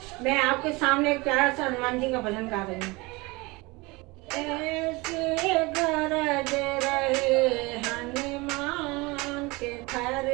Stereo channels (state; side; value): quieter; left; 24.3 dB